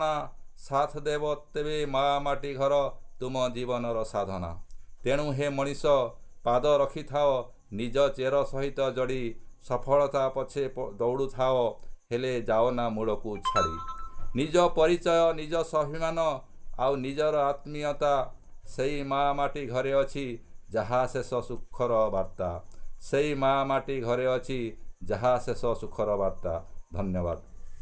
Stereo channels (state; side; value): identical; both; correlation 1.00